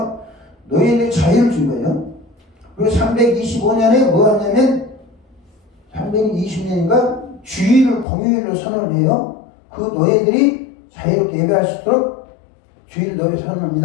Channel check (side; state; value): right; drops out; at 8.1 s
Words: 노예들 자유를 준 거예요. 그리고 325년에 뭐 하냐면 320년인가 주일을 공휴일로 선언을 해요. 그 노예들이 자유롭게 예배할 수 있도록 주일 노예